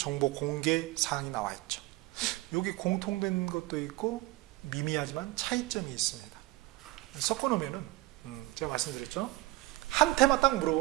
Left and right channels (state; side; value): quieter; left; 20.0 dB